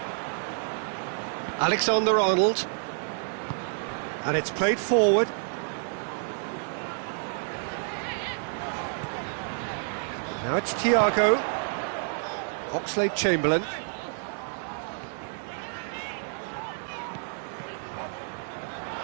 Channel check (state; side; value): silent; left; 59 dB below the other